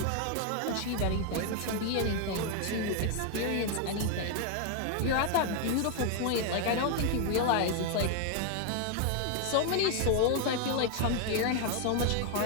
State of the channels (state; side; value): different; both; correlation 0.00